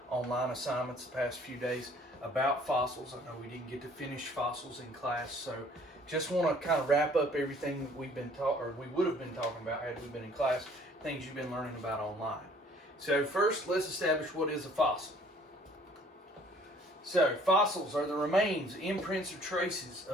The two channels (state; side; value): normal; both; correlation 0.56